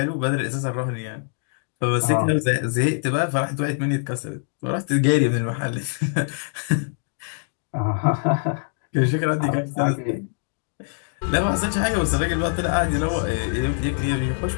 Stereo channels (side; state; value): right; silent; digital silence